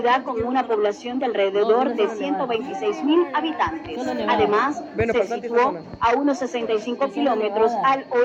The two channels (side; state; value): both; identical; correlation 1.00